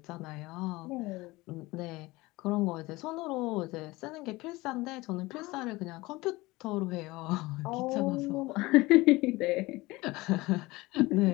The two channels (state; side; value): quieter; right; 21.0 dB